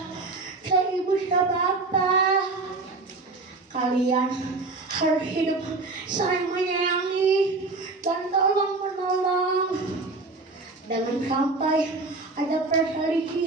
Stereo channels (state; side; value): quieter; left; 3.5 dB